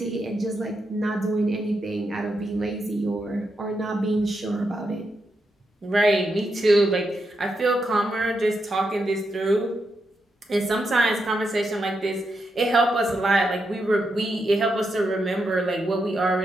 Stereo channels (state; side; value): normal; both; correlation 0.84